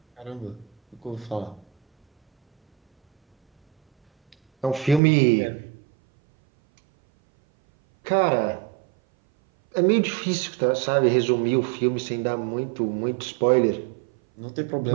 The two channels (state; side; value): drops out; left; at 5.0 s